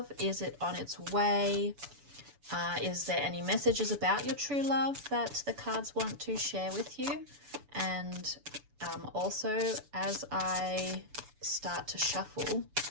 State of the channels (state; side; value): late; left; 7.0 ms